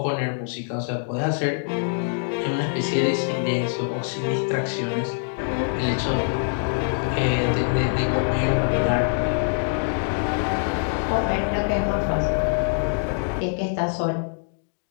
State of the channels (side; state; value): right; silent; digital silence